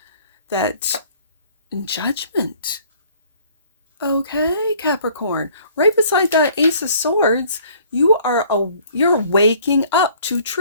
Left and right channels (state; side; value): inverted; both; correlation -0.56